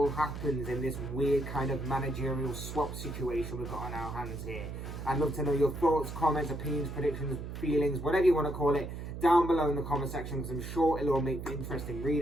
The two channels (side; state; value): right; noise; hum, 8 dB below the sound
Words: happens in this weird kind of managerial swap situation we've got on our hands here? I'd love to know your thoughts, comments, opinions, predictions, feelings, whatever you want to call it, down below in the comment section, because I'm sure it'll all make for interesting